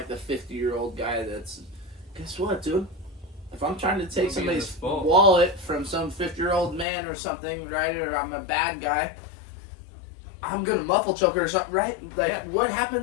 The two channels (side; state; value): right; drops out; at 6.9 s